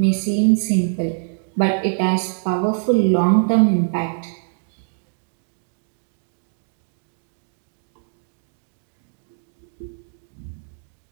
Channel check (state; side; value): silent; left; digital silence